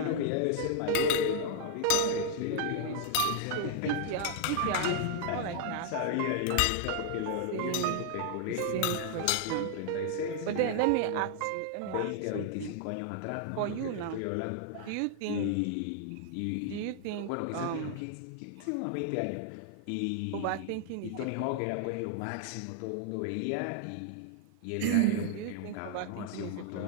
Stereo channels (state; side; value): different; both; correlation 0.00